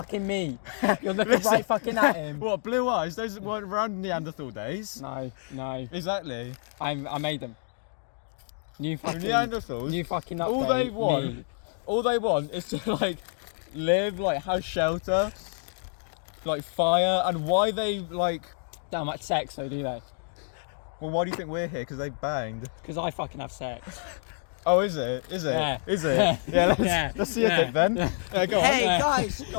me. You're looking Listen. right fucking at him. What, blue eyes? Those weren't around Neanderthal days. No. Exactly. I made them. New The fucking... Neanderthals. New fucking update. All they want is to like live, like have shelter, like fire, and why they like. Don't much sex though, do they? Well, why do you think we're here? Because they banged. Because I fucking have sex. Oh, is it? Is it? Yeah. Is it? Yeah. Let's see your Yeah. dick then. Yeah, go on. Hey Yeah. guys,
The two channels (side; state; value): right; silent; digital silence